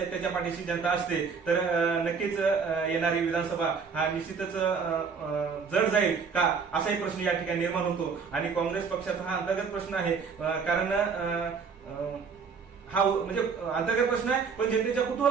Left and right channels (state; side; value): quieter; left; 5.6 dB